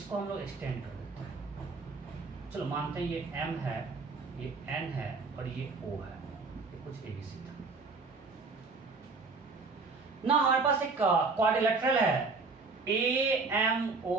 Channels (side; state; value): left; quieter; 4.1 dB